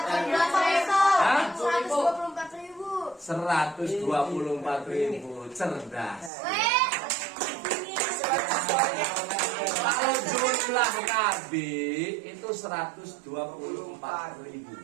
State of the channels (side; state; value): left; drops out; at 6.3 s